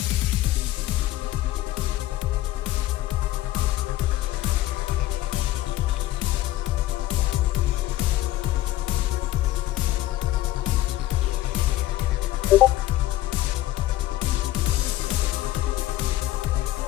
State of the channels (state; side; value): quieter; right; 15.0 dB